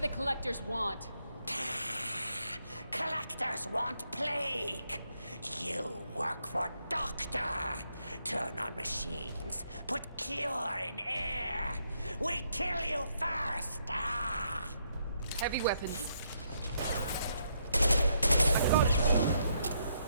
the collectors want? Collectors want plague. You work for Doctor. Turn on machines. Put cure in air. We kill you first. Ah. Heavy weapons.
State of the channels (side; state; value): both; inverted; correlation -0.75